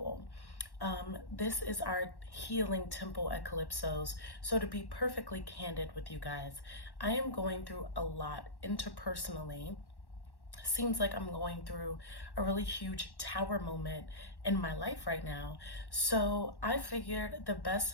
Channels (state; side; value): late; right; 1.1 ms